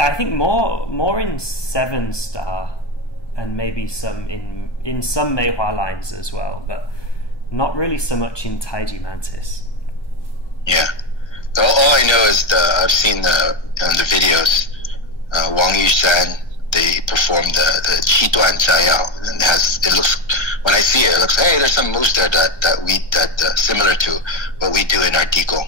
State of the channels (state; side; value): late; right; 1.3 ms